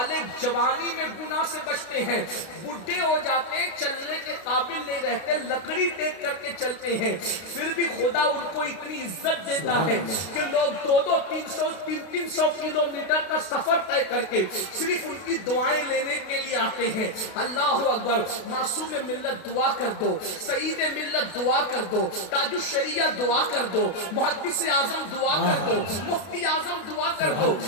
جوانی میں گناہ سے بچتے ہیں، بڈھے ہو جاتے ہیں، چلنے کے قابل نہیں رہتے، لکڑی ٹیک کر کے چلتے ہیں، پھر بھی خدا ان کو اتنی عزت دیتا ہے کہ لوگ 200-300 کلومیٹر کا سفر طے کر کے صرف ان کی دعائیں لینے کے لیے آتے ہیں۔ اللہ اکبر۔ معصوم ملت دعا کر دو، سعید ملت دعا کر دو، تاج الشریعہ دعا کر دو، محدث اعظم دعا کر دو، مفتی اعظم دعا کر دو۔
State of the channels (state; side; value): late; right; 32 ms